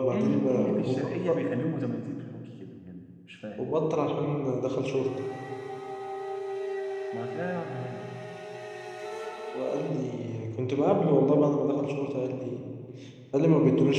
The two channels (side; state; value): both; identical; correlation 1.00